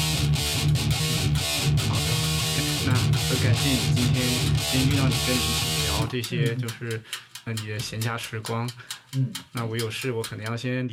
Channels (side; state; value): both; identical; correlation 1.00